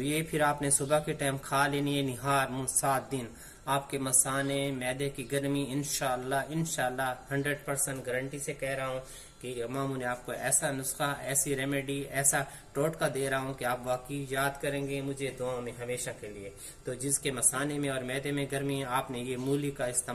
फिर आपने सुबह के टाइम खा लेनी है निहार 7 दिन। आपके मसाने, मैदे की गर्मी इंशाल्लाह 100% गारंटी से कह रहा हूँ कि इमाम ने आपको ऐसा नुस्खा, ऐसी रेमेडी, ऐसा टोटका दे रहा हूँ कि आप वाकई याद करेंगे मुझे दुआ में हमेशा के लिए। तो जिसके मसाने में और मैदे में गर्मी है, आपने ये मूली का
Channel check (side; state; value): both; identical; correlation 1.00